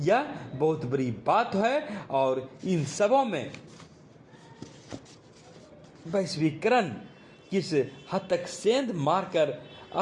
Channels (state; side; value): identical; both; correlation 1.00